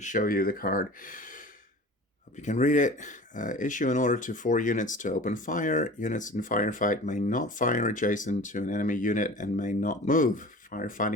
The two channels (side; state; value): both; normal; correlation 0.40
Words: you the card. Hope you can read it. Issue an order to 4 units to open fire. Units in Firefight may not fire adjacent to an enemy unit and may not move.